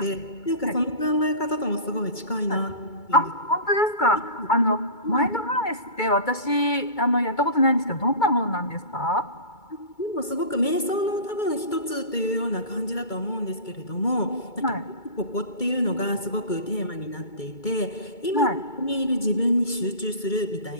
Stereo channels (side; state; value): right; late; 2.2 ms